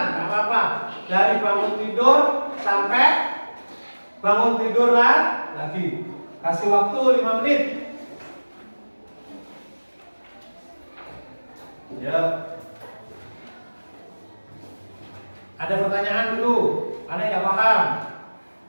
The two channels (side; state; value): both; inverted; correlation -1.00